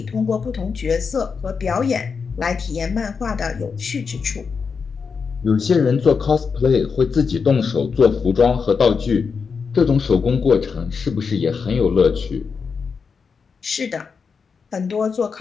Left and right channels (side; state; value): right; quieter; 5.6 dB